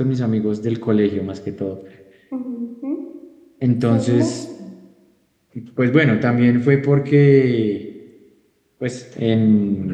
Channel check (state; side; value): identical; both; correlation 1.00